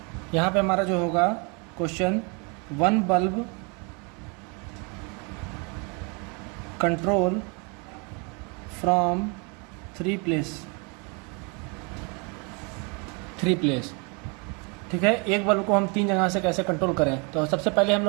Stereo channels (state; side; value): quieter; left; 32.9 dB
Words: यहाँ पे हमारा जो होगा question, 1 bulb control from 3 place. ठीक है, एक बल्ब को हम 3 जगह से कैसे कंट्रोल करें। तो सबसे पहले हम